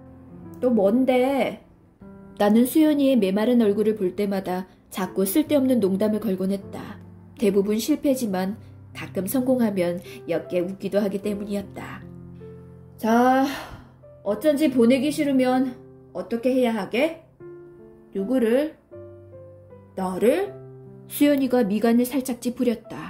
또 뭔데? 나는 수연이의 메마른 얼굴을 볼 때마다 자꾸 쓸데없는 농담을 걸곤 했다. 대부분 실패지만 가끔 성공하면 옅게 웃기도 하기 때문이었다. 자, 어쩐지 보내기 싫으면 어떻게 해야 하게? 누구를? 너를? 수연이가 미간을 살짝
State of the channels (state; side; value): identical; both; correlation 1.00